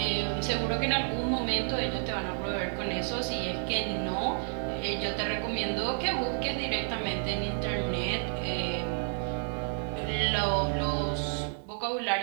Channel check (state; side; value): silent; left; digital silence